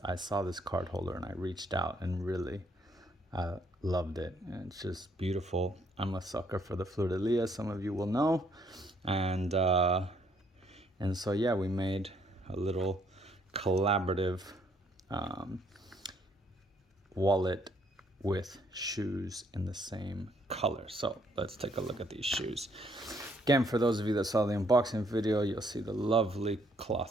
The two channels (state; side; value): normal; both; correlation 0.68